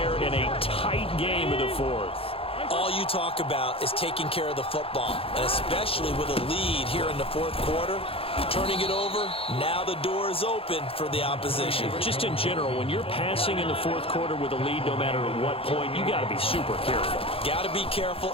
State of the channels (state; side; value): late; right; 0.27 ms